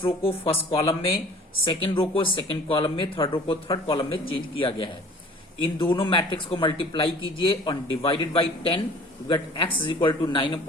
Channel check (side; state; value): both; normal; correlation 0.49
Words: row को फर्स्ट कॉलम में, सेकेंड रो को सेकेंड कॉलम में, थर्ड रो को थर्ड कॉलम में चेंज किया गया है। इन दोनों मैट्रिक्स को मल्टीप्लाई कीजिए और divided by 10, you get x is equal to